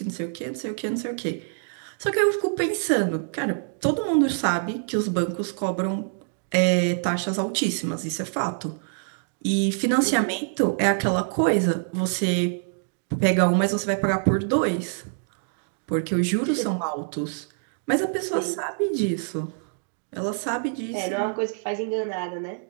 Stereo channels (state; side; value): silent; left; digital silence